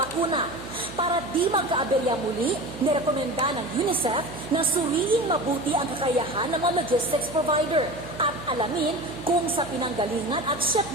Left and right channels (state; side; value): noise; right; hum, 15 dB below the sound